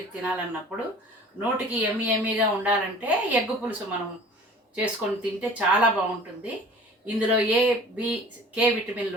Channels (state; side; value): normal; both; correlation 0.45